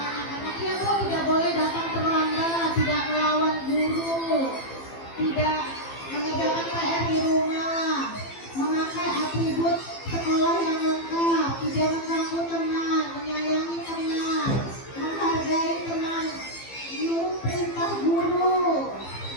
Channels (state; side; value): late; right; 15 ms